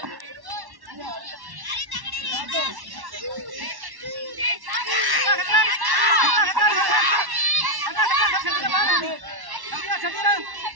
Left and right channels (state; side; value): late; left; 1.1 ms